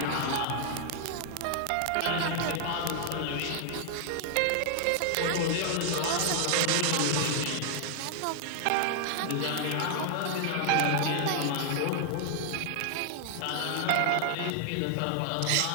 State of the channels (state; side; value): different; both; correlation -0.01